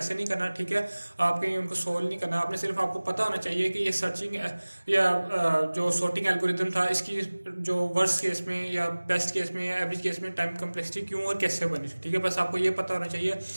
नहीं करना। ठीक है, आपके उनको सोल्व नहीं करना, आपने सिर्फ आपको पता होना चाहिए कि ये सर्चिंग या जो सॉर्टिंग एल्गोरिदम था, इसकी जो वर्स्ट केस में या बेस्ट केस में या एवरेज केस में टाइम कॉम्प्लेक्सिटी क्यों और कैसे बनी। ठीक है, बस आपको ये पता होना चाहिए।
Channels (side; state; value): both; inverted; correlation -1.00